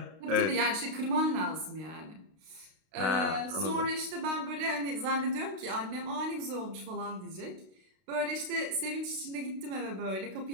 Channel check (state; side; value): late; left; 32 ms